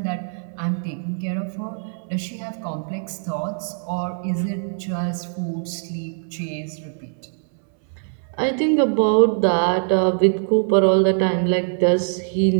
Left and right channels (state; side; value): silent; left; 64 dB below the other